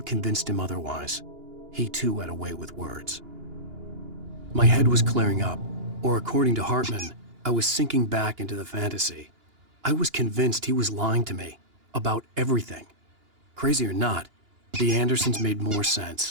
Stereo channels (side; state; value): left; late; 2.9 ms